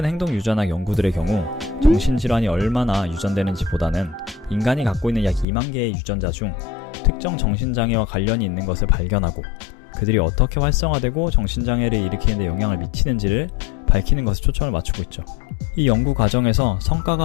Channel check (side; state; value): right; drops out; at 5.5 s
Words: 행동 유전학 연구들의 경우 정신질환이 얼마나 유전되는지 보다는 인간이 갖고 있는 약 2만 개의 유전자 중 특정 정신장애와 관련이 있는 것을 발견하고 그들이 어떻게 활성화되고 정신장애를 일으키는 데 영향을 미치는지를 밝히는 것에 초점을 맞추고 있죠. 이 연구 과정에서